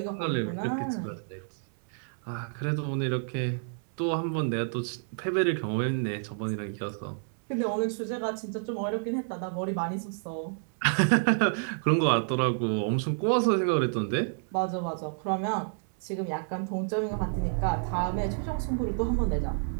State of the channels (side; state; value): left; silent; 58 dB below the other